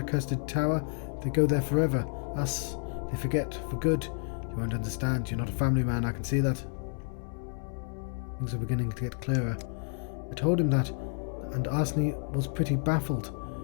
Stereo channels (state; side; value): silent; right; 57 dB below the other